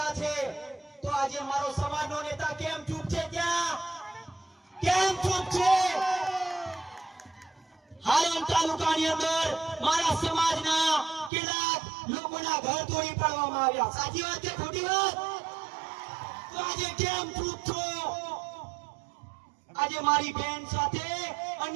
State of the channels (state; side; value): drops out; left; at 11.3 s